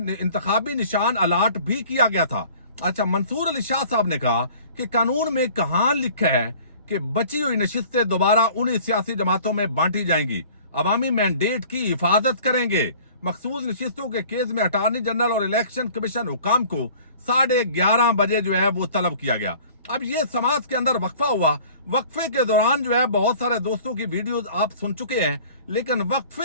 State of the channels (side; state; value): both; inverted; correlation -0.49